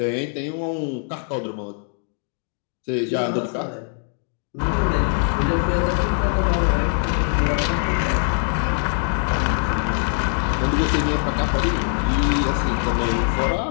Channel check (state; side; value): silent; right; 57 dB below the other